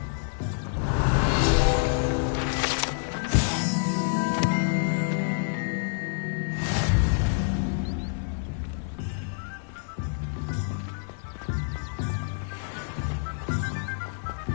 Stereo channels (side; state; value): right; silent; digital silence